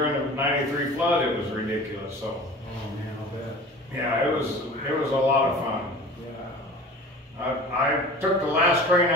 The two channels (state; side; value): normal; both; correlation 0.40